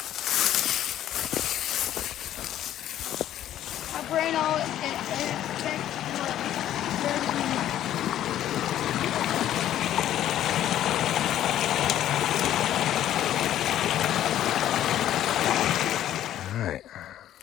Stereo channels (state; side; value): quieter; right; 12.0 dB